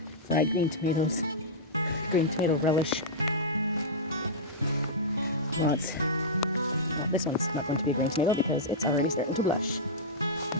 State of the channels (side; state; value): both; normal; correlation -0.12